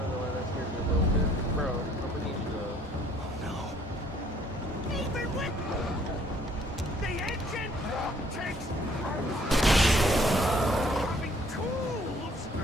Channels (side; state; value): both; normal; correlation 0.61